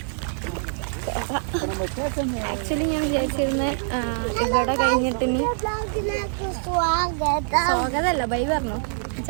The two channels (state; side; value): silent; left; digital silence